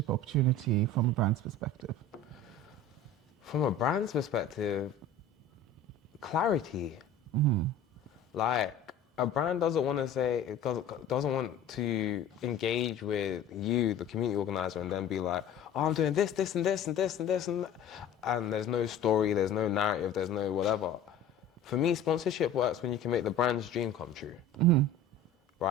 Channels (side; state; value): right; quieter; 3.2 dB